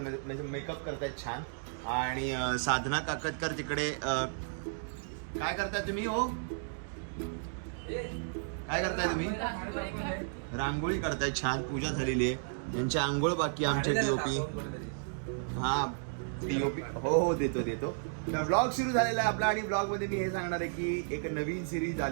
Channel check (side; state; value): left; silent; digital silence